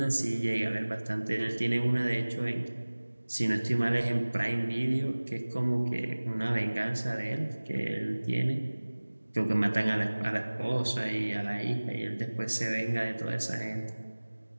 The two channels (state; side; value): inverted; both; correlation -1.00